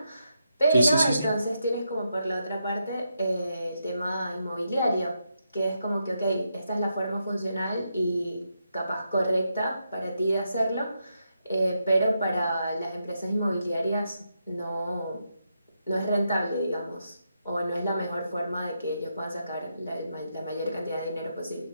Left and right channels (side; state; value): both; inverted; correlation -0.83